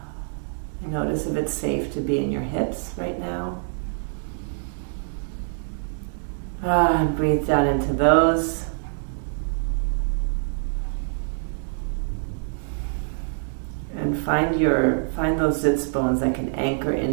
Notice if it's safe to be in your hips right now. And breathe down into those. And find those sits bones that can anchor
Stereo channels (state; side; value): silent; left; 62 dB below the other